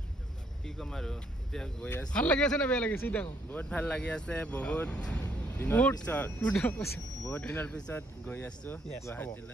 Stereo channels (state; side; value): normal; both; correlation 0.70